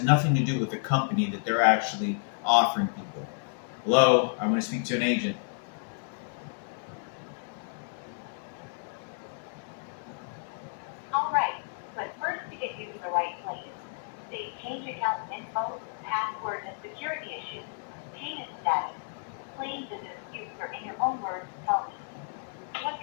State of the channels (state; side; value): silent; right; 57 dB below the other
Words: nothing to do with the company that they're actually offering people. Hello, I want to speak to an agent. All right, but first to get you to the right place, say change account info, password, and security issues, payment status, claims and disputes, or in your own words, tell me. What